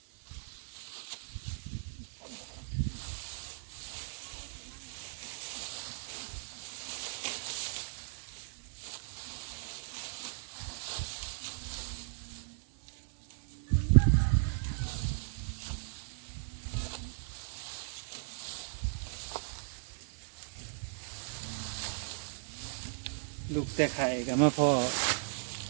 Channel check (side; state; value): left; silent; digital silence